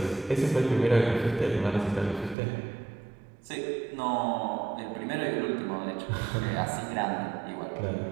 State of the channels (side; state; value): left; drops out; at 2.4 s